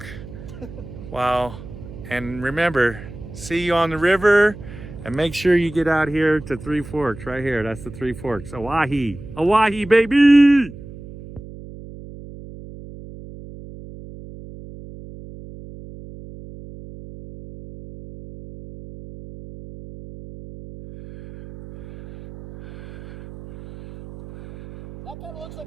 Wow. And remember, see you on the river, and make sure you get out here to Three Forks right here. That's the Three Forks. Owyhee. Owyhee, baby! That kind of looks like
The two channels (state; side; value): noise; right; hum, 15 dB below the sound